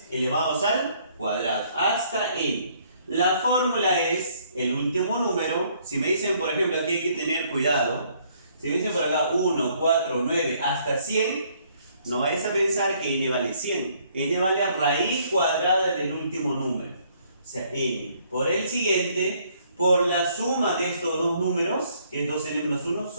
elevados al cuadrado, hasta n. La fórmula es el último número. Si me dicen, por ejemplo, aquí hay que tener cuidado. Si me dicen por acá 1, 4, 9, hasta 100, no vayas a pensar que n vale 100. N vale a raíz cuadrada del último número. O sea, n por el siguiente, por la suma de estos dos números, que es 2n menos 1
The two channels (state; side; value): inverted; both; correlation -0.65